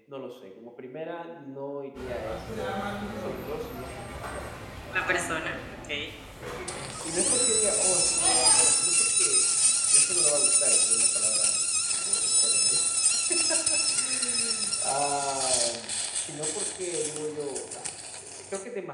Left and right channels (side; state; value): both; identical; correlation 1.00